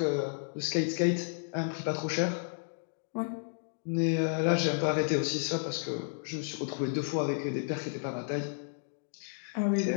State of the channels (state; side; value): silent; right; digital silence